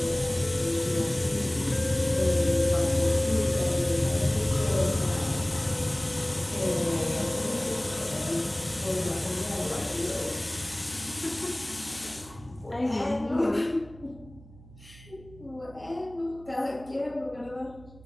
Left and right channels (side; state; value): right; noise; hum, 21 dB below the sound